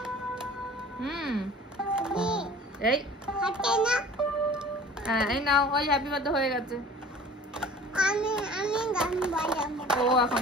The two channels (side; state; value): both; normal; correlation 0.45